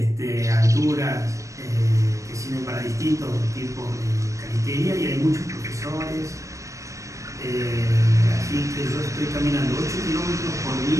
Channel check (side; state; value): left; late; 0.15 ms